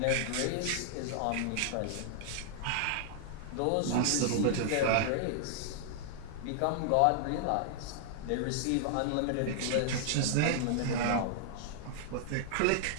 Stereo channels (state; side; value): different; both; correlation -0.01